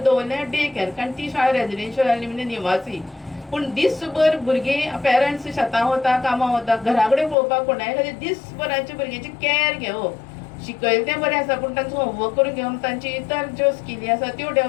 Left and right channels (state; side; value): drops out; right; at 7.4 s